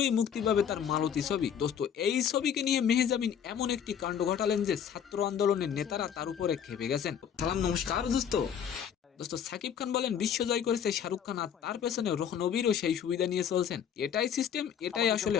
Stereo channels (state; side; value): quieter; right; 8.4 dB